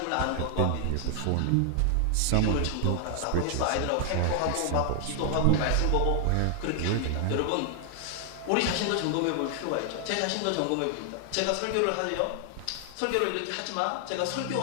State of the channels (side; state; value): both; different; correlation 0.00